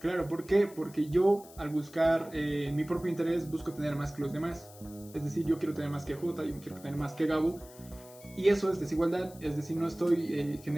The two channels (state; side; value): noise; left; hiss, 21 dB below the sound